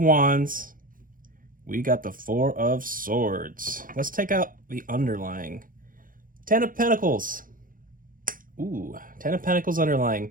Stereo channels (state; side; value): late; left; 0.40 ms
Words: We got the Four of Swords. Let's take out the underlying. 10 of Pentacles. Ooh, 10 of Pentacles